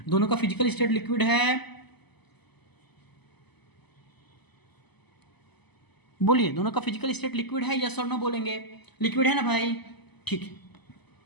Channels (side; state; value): right; late; 0.99 ms